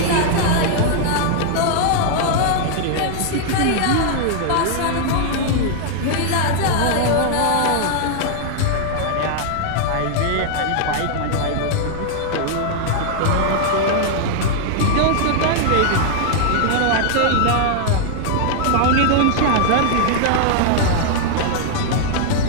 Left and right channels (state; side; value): different; both; correlation -0.01